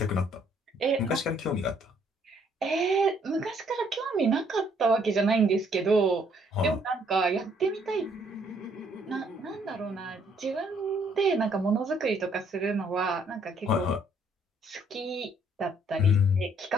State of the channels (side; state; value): both; normal; correlation 0.66